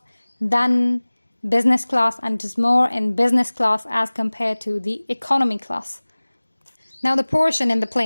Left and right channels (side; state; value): both; inverted; correlation -1.00